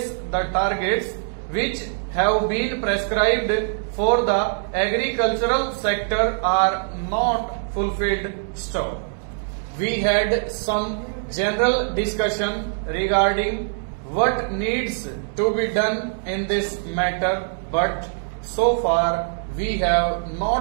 the targets which have been prescribed for the agricultural sector are not fulfilled. Stop. We had some general discussion regarding what needs to be done in this matter, but so far we have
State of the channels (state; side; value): silent; left; 63 dB below the other